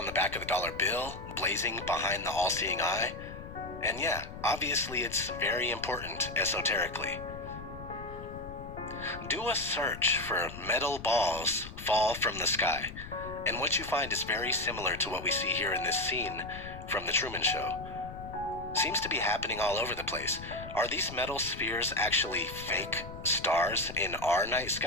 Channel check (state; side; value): noise; left; rumble, 12 dB below the sound